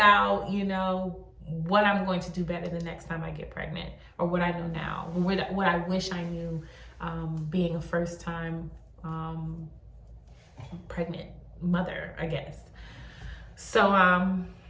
you know, what I'm going to do better the next time I get pregnant, or what I know now, what I wish I knew being a first time pregnant mother, I guess. So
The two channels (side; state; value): both; identical; correlation 1.00